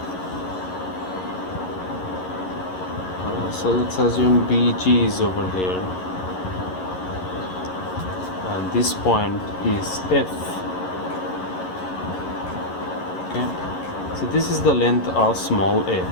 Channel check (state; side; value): late; right; 11 ms